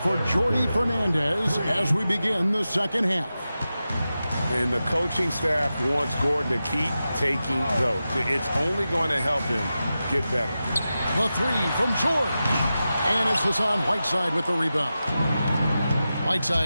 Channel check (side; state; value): both; inverted; correlation -0.92